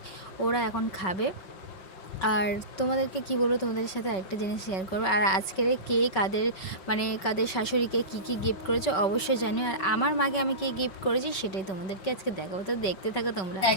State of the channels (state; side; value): late; right; 5.3 ms